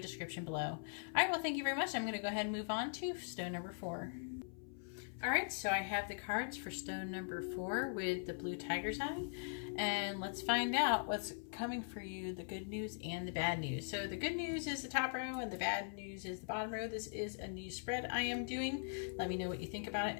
below. All right, well, thank you very much. I'm going to go ahead and move on to stone number 4. Alright, so I have the cards for stone number 4 with the blue tiger's eye. And let's find out what's coming for you, the good news and the bad news. So the good news is the top row and the bad news is the bottom row. This is a new spread I am doing. Let me know what you think about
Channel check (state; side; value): silent; right; 50 dB below the other